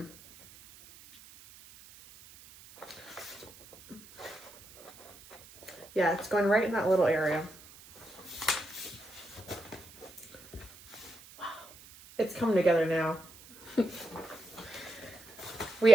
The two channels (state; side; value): noise; right; hiss, 19 dB below the sound